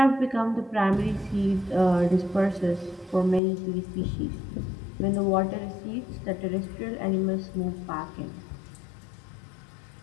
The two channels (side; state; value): right; drops out; at 3.4 s